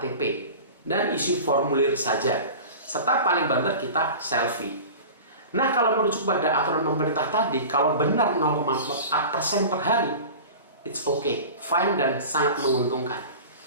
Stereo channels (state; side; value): inverted; both; correlation -0.36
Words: dan isi formulir saja, serta paling banter kita selfie. Nah, kalau merujuk pada aturan pemerintah tadi, kalau benar 0,4% per hari, it's okay, fine dan sangat menguntungkan